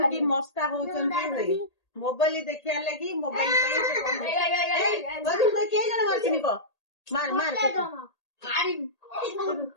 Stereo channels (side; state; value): right; late; 1.8 ms